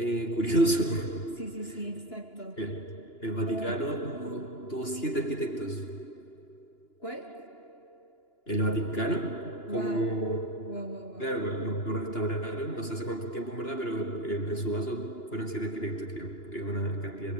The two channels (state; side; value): late; right; 2.9 ms